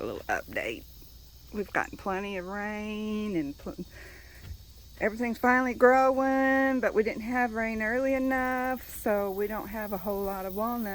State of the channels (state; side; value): identical; both; correlation 1.00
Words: little update. We've gotten plenty of rain and everything's finally growing, but we didn't have rain early enough, so we don't have a whole lot of